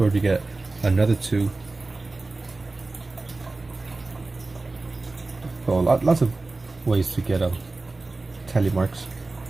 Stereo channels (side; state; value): left; quieter; 3.4 dB